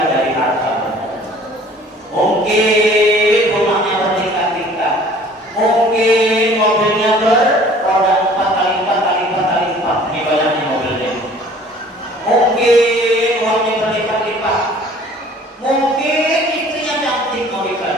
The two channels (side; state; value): both; normal; correlation 0.51